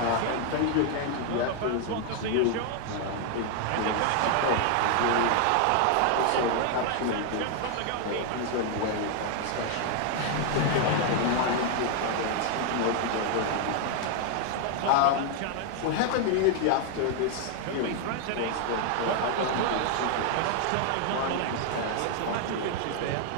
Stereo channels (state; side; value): different; both; correlation 0.00